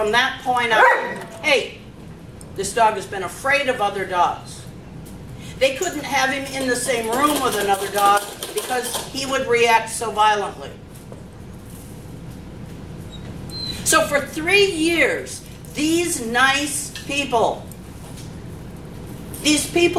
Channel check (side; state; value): both; identical; correlation 1.00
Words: that point on, hey, this dog has been afraid of other dogs. They couldn't have him in the same room with another dog because he would react so violently. So for 3 years, these nice people, these